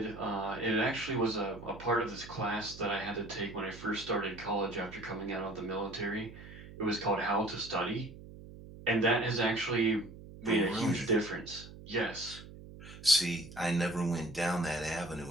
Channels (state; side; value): noise; right; hum, 15 dB below the sound